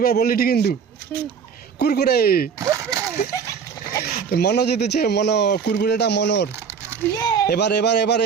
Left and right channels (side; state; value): left; quieter; 6.5 dB